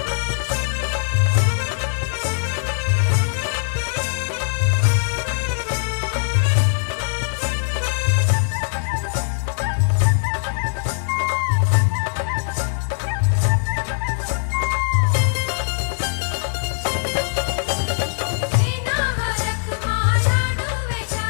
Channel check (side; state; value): right; silent; digital silence